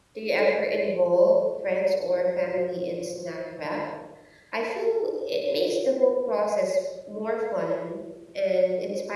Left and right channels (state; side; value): identical; both; correlation 1.00